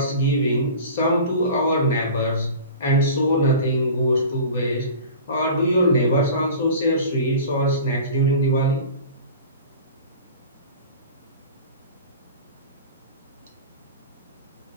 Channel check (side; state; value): both; inverted; correlation -0.38